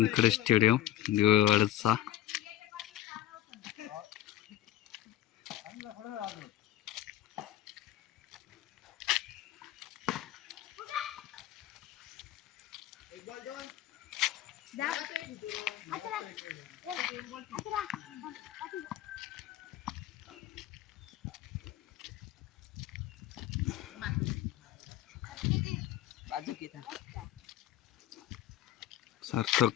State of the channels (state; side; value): quieter; right; 13.1 dB